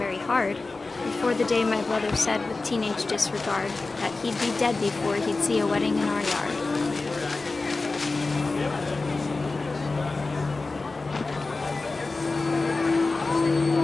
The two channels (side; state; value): right; quieter; 3.6 dB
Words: hard, before the day my brother said with teenage disregard that he'd be dead before he'd see a wedding in our yard.